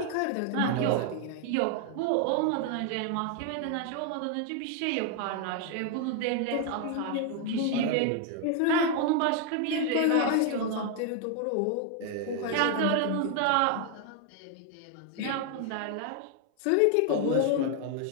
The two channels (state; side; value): different; both; correlation 0.00